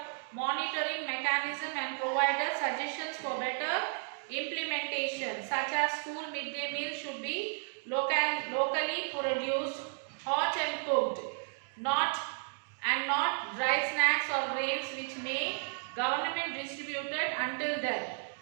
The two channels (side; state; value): left; silent; 55 dB below the other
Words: monitoring mechanism and provided suggestions for better implementation, such as school midday meal should be locally produced, hot and cooked, not dry snacks or grains which may government distributed until then.